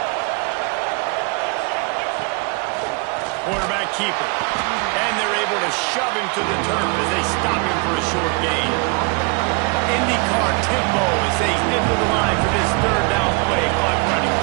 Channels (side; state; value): left; quieter; 31.0 dB